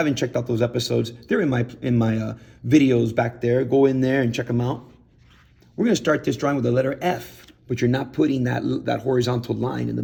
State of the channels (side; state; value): both; identical; correlation 1.00